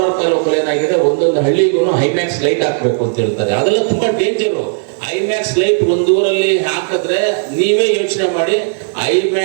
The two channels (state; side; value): silent; left; digital silence